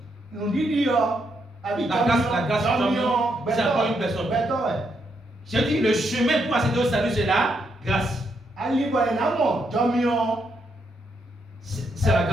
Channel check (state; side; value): normal; both; correlation 0.78